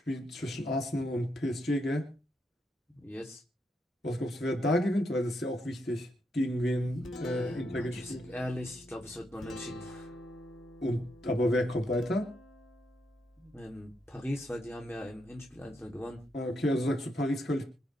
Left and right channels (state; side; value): normal; both; correlation 0.80